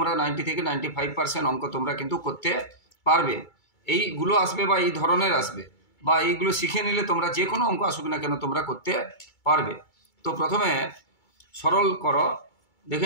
90 থেকে 95% অঙ্ক তোমরা কিন্তু করতে পারবে। এইগুলো আসবে বা এই ধরনের আসবে বা এইগুলো শিখে নিলে তোমরা যে কোনো অঙ্ক আসুক না কেন তোমরা করতে পারবে। তো প্রথমে সরল করো,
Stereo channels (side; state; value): right; late; 2.3 ms